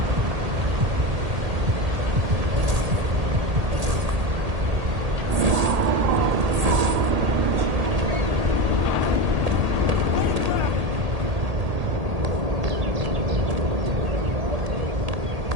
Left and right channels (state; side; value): late; left; 1.8 ms